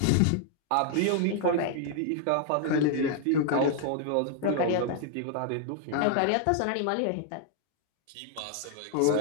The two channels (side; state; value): both; different; correlation 0.00